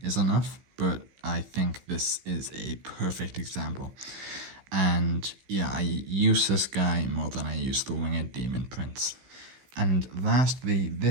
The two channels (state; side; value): late; left; 15 ms